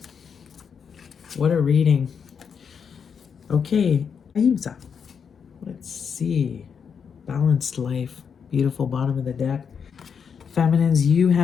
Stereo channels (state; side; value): quieter; right; 6.7 dB